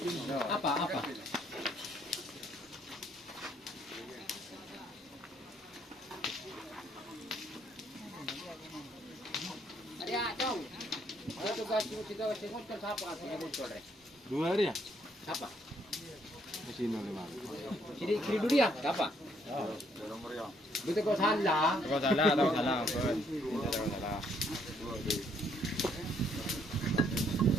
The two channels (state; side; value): normal; both; correlation 0.69